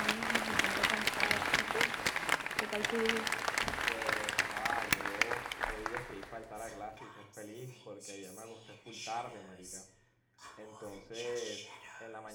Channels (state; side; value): identical; both; correlation 1.00